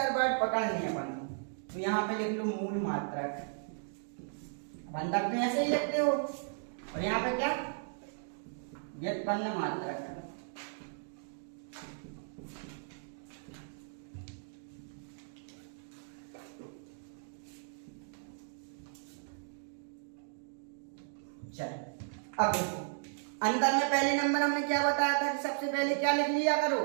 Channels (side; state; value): left; silent; digital silence